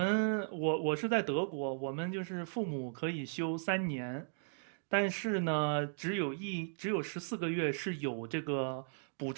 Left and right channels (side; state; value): left; silent; digital silence